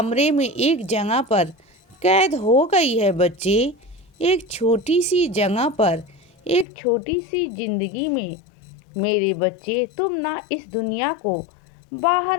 में एक जगह पर कैद हो गई है बच्चे। एक छोटी सी जगह पर, एक छोटी सी जिंदगी में। मेरे बच्चे, तुम ना इस दुनिया को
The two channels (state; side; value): drops out; right; at 6.7 s